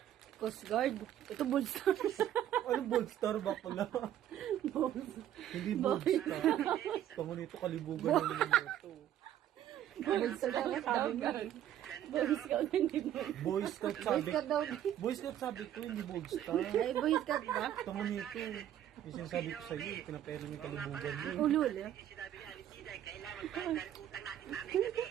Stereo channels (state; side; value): quieter; left; 11.3 dB